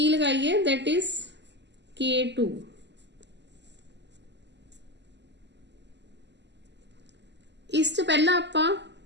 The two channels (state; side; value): late; left; 0.51 ms